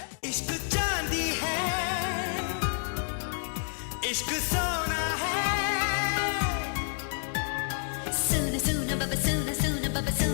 इश्क चांदी है, इश्क सोना है। सोना सोना बाबा सोना सोना बाबा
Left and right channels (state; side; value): silent; right; digital silence